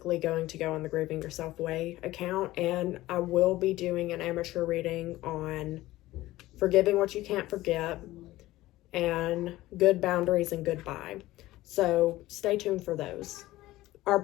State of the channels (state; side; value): quieter; right; 16.9 dB